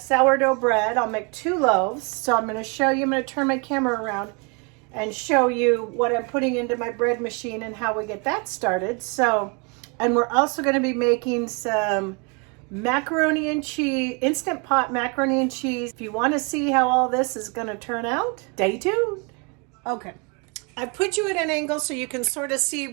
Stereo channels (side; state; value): left; quieter; 32.6 dB